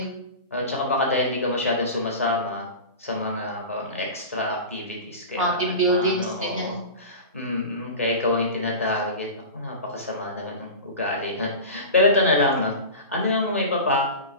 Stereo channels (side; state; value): both; inverted; correlation -0.31